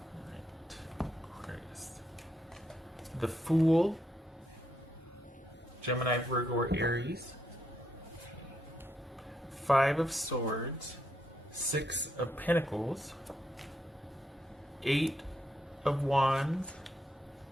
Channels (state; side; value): normal; both; correlation 0.79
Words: Alright. Aquarius. The Fool. Gemini, Virgo, or Aries. Five of Swords. Six of Pentacles. Eight of Wands.